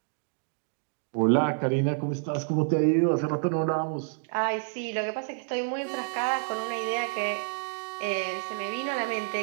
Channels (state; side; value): silent; left; digital silence